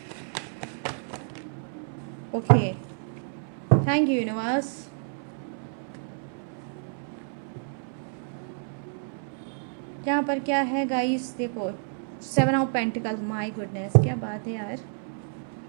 Okay, thank you universe. यहाँ पर क्या है गाइस, देखो 7 ऑफ पेंटिकल्स, माय गुडनेस, क्या बात है यार।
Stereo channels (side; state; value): left; silent; 58 dB below the other